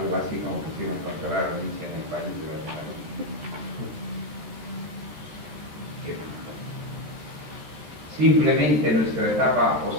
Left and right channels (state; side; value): late; left; 13 ms